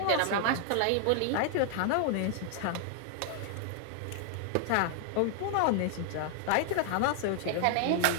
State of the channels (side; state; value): both; different; correlation 0.00